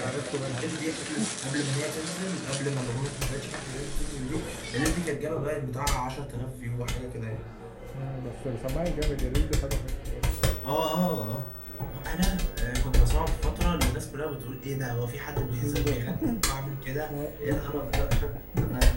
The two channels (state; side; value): identical; both; correlation 1.00